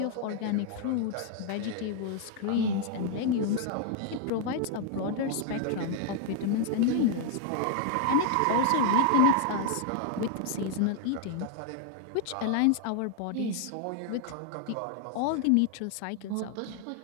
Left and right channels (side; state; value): both; different; correlation 0.00